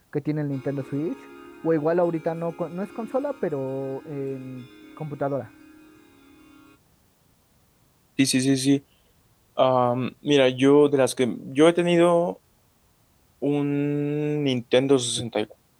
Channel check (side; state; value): both; identical; correlation 1.00